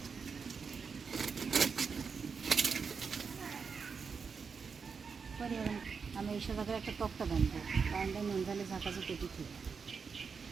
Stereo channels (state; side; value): quieter; left; 5.6 dB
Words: আমি এই সাথে একটা টকটা বানবো, বানলে নুন ঝালে ঝাঁকা ঝুঁকে দিচ্ছি।